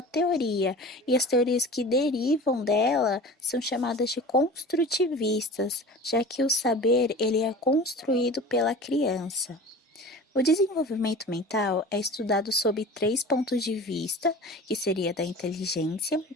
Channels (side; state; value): both; normal; correlation 0.37